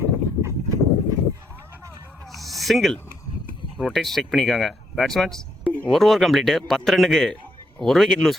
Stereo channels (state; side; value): normal; both; correlation 0.75